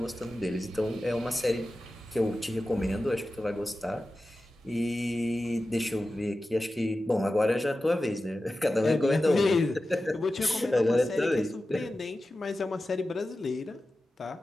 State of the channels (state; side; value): normal; both; correlation 0.94